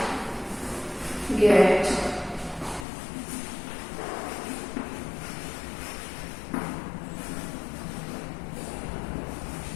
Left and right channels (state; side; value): drops out; right; at 2.9 s